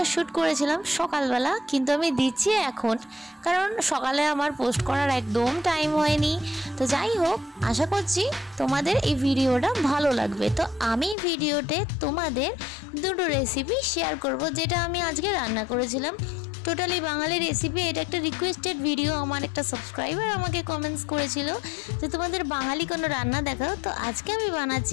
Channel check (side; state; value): right; drops out; at 11.2 s